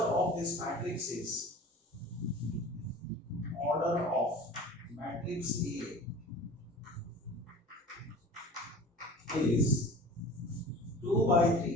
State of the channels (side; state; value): both; normal; correlation 0.40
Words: this matrix is order of matrix A is 2 by